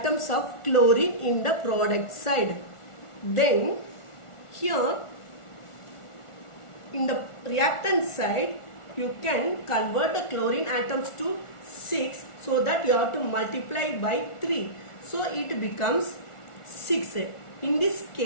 of chlorine in the product side. Then here in the reactant side, you can convert the chlorine atoms to 6, so that you have to multiply by 3. So it becomes 6. In this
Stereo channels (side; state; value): right; late; 1.4 ms